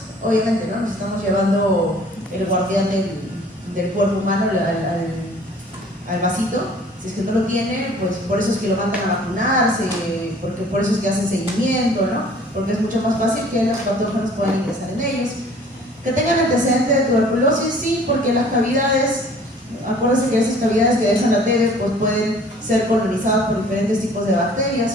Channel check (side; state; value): both; normal; correlation 0.52